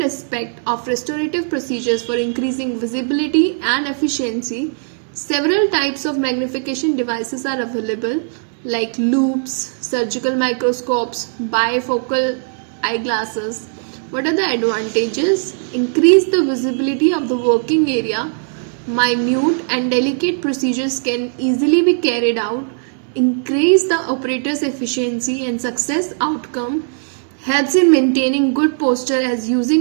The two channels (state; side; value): silent; left; digital silence